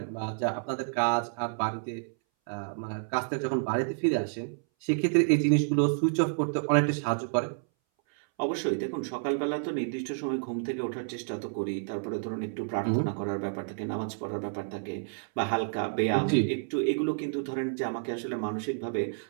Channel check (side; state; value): left; silent; 58 dB below the other